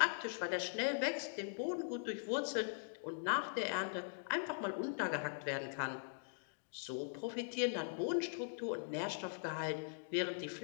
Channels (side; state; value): right; silent; digital silence